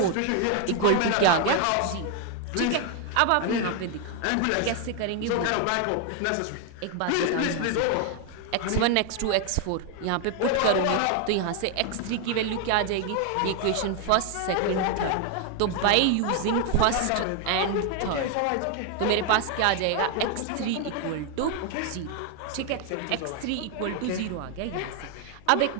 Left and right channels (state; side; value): different; both; correlation 0.01